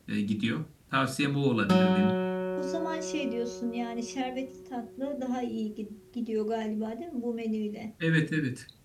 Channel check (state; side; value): identical; both; correlation 1.00